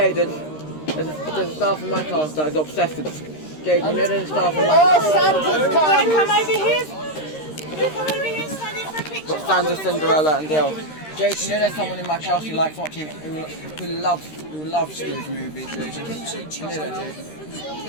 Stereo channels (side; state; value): right; late; 13 ms